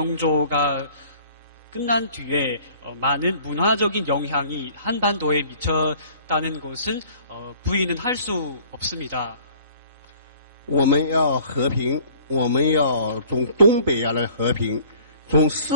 끝난 뒤에 많은 문화적인 영향이 한반도에 미쳤다는 것은 부인은 할 수 없습니다. 我们要和平，我们要从东北亚来和平，从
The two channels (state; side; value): inverted; both; correlation -0.53